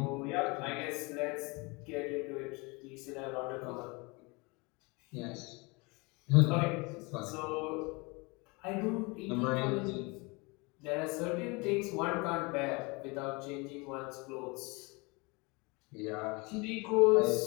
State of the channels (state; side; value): quieter; right; 27.4 dB